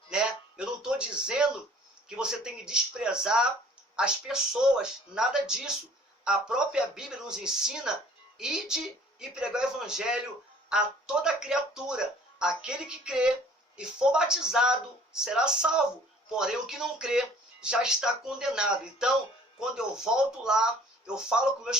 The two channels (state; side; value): normal; both; correlation 0.53